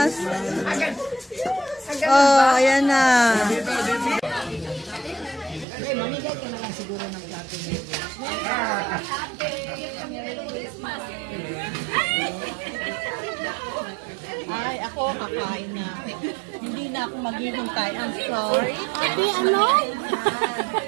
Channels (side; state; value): left; drops out; at 5.7 s